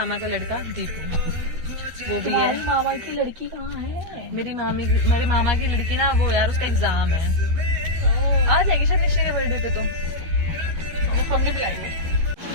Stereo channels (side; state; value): left; late; 13 ms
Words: का लड़का दीपू, वो भी है। मामा की लड़की कहाँ है? मेरे मामा की लड़की ना, वो यार उसका एग्जाम है, आ जाएगी शायद निश्चय के बर्थडे पे, तो फोन नहीं बुलाएंगे।